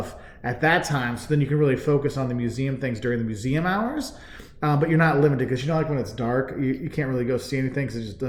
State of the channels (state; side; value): identical; both; correlation 1.00